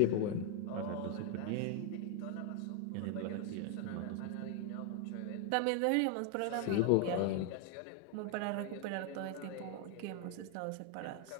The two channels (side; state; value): both; different; correlation 0.00